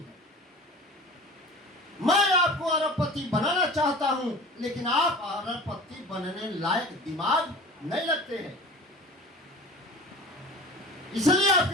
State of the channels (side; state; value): both; normal; correlation 0.39